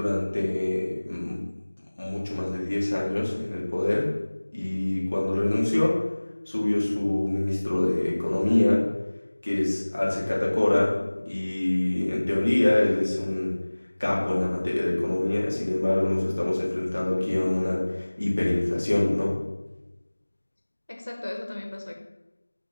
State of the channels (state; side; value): inverted; both; correlation -1.00